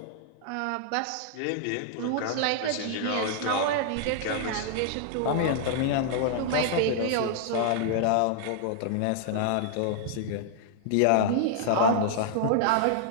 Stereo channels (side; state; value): both; different; correlation -0.01